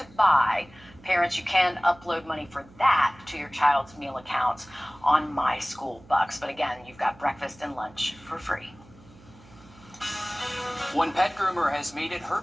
buy. Parents, you can upload money for that to your child's meal accounts on My School Bucks. But again, you've got breakfast and lunch for free. One pet groomer has made it her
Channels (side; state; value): right; noise; hum, 24 dB below the sound